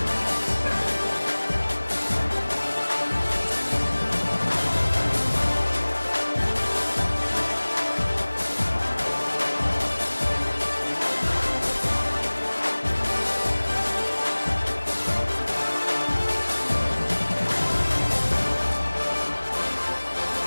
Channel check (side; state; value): both; inverted; correlation -1.00